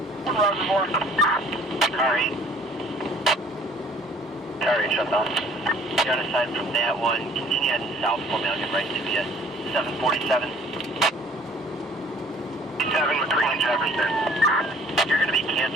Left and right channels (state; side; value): normal; both; correlation 0.55